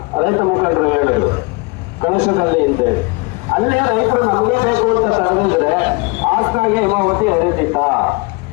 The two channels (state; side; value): quieter; right; 27.4 dB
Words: ರೈತ ಮುಖಂಡರು ಹೇಳಿದ್ರು ಕಳಶದಲ್ಲಿ ಅಂತೇಳಿ. ಅಲ್ಲೇ ರೈತರು ನಮಗೆ ಬೇಕು ಅಂತ ತಡೆದಿದ್ರೆ ಹಾಸನಾಗೆ ಹೇಮಾವತಿ ಹರಿತಿತ್ತ?